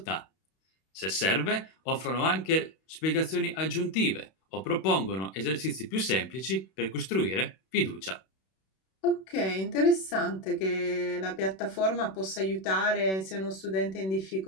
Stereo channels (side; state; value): right; late; 31 ms